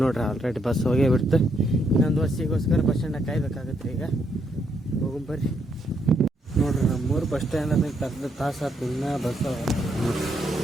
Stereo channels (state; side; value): normal; both; correlation 0.75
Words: ನೋಡ್ರಿ ಆಲ್ರೆಡಿ ಬಸ್ ಹೋಗೇ ಬಿಡ್ತು. ಇನ್ನೊಂದು ಬಸ್ಸಿಗೋಸ್ಕರ ಬಸ್ ಸ್ಟ್ಯಾಂಡಾಗ ಕಾಯ್ಬೇಕಾಗತ್ತೆ. ಈಗ ಹೋಗಂಬರ್ರಿ. ನೋಡ್ರಿ ನಮ್ಮೂರು ಬಸ್ ಸ್ಟ್ಯಾಂಡ್ ಅಂದ್ರೆ ಕರೆದ ತಾಸು ಆಯ್ತು, ಇನ್ನೂ ಬಸ್